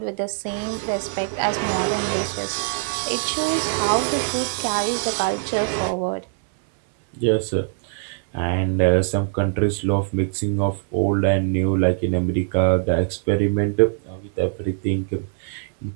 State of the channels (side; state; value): left; silent; 61 dB below the other